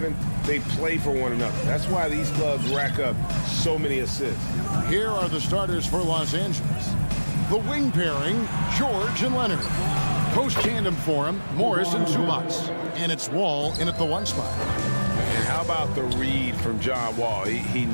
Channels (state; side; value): inverted; both; correlation -1.00